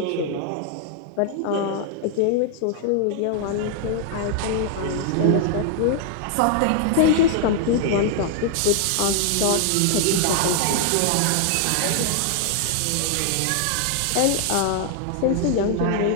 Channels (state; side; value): different; both; correlation 0.00